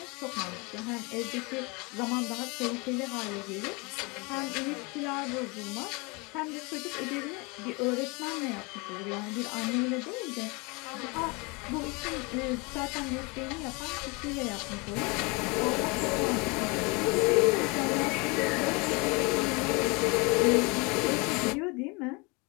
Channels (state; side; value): quieter; right; 28.4 dB